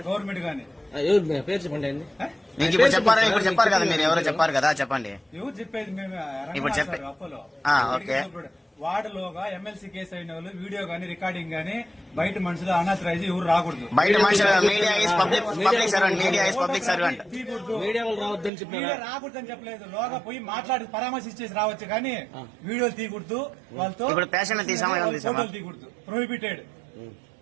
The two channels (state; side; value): drops out; left; at 18.5 s